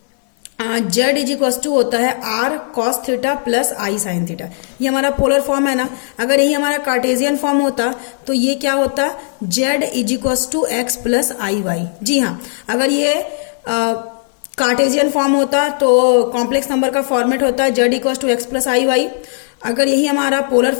जेड इज इक्वल टू होता है आर कॉस थीटा प्लस आई साइन थीटा। ये हमारा पोलर फॉर्म है ना। अगर यही हमारा कार्टेशियन फॉर्म होता तो ये क्या होता, z is equal to x plus i y. जी हाँ, अगर ये कार्टेशियन फॉर्म होता तो कॉम्प्लेक्स नंबर का फॉर्मेट होता है z equal to x plus i y. अगर यही हमारा पोलर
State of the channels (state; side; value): silent; right; 69 dB below the other